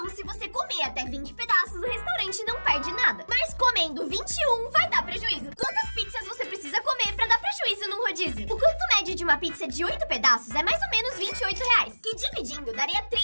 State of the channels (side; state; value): both; inverted; correlation -1.00